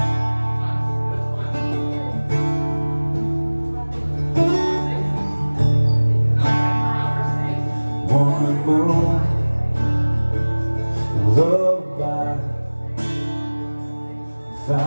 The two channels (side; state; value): both; inverted; correlation -1.00